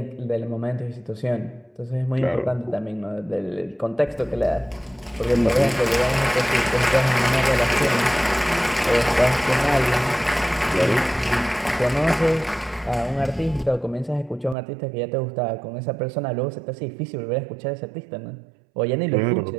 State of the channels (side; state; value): left; drops out; at 14.6 s